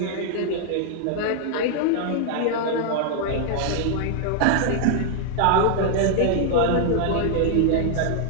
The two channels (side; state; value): both; different; correlation -0.01